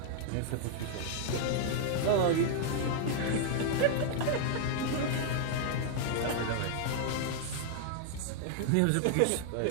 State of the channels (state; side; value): different; both; correlation -0.01